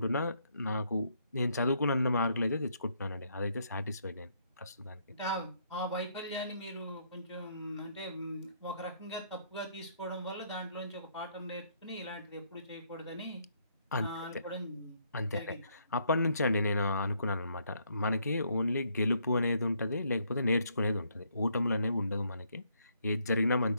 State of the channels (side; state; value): both; inverted; correlation -0.71